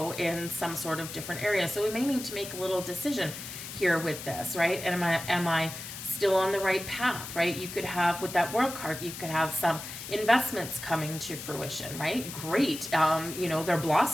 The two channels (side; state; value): left; noise; hiss, 10 dB below the sound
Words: in some sort of different area. So we may need to make a little decision here with this, right? And am I still on the right path, right? You could have, with that World card, you could have some investments coming to fruition, right? Great. They're